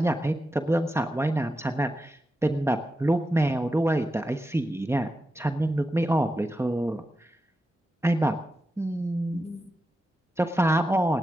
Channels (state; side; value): normal; both; correlation 0.89